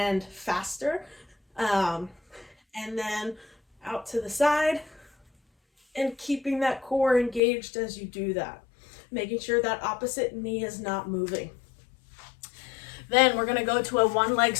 faster. And then out to the side, and keeping that core engaged as you do that, making sure that opposite knee is not moving. Then we're gonna go to a one leg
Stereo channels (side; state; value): right; drops out; at 7.4 s